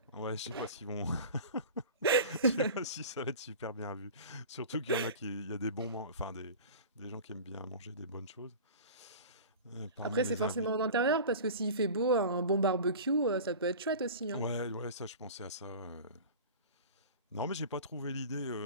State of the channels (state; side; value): inverted; both; correlation -0.36